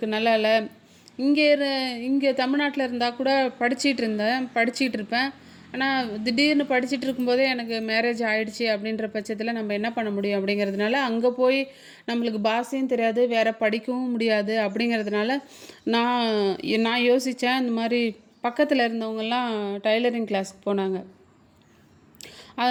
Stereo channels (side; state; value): both; identical; correlation 1.00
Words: நல்லா இல்லை. இங்கே தமிழ்நாட்டில் இருந்தால் கூட படிச்சிகிட்டு இருப்பேன். ஆனால் திடீர்னு படிச்சுட்டு இருக்கும்போதே எனக்கு மேரேஜ் ஆகிடுச்சி. அப்படின்ற பட்சத்தில் நம்ம என்ன பண்ண முடியும் அப்படிங்கிறதுனால, அங்கே போய் நம்மளுக்கு பாஷையும் தெரியாது, வேறு படிக்கவும் முடியாது. அப்படிங்கிறதுனால நான் யோசித்தேன். இந்த மாதிரி பக்கத்தில் இருந்தவங்கெல்லாம் டைலரிங் கிளாஸுக்கு போனாங்க.